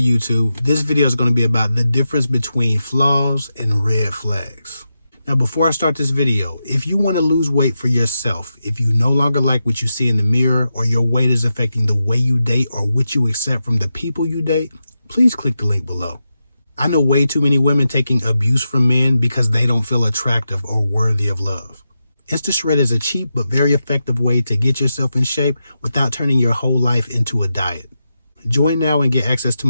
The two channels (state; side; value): inverted; both; correlation -0.89